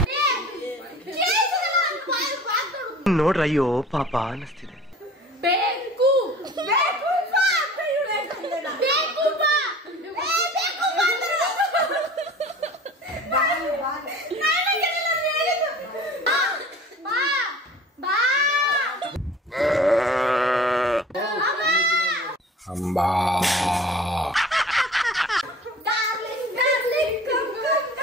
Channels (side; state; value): both; normal; correlation 0.44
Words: ನೋಡ್ರಯ್ಯೋ ಪಾಪ ಅನಿಸ್ತಿದೆ. ಬೇಕು ಅಂಬಾ